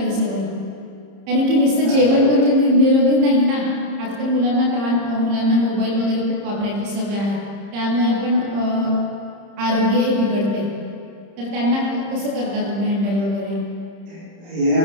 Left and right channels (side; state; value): left; late; 30 ms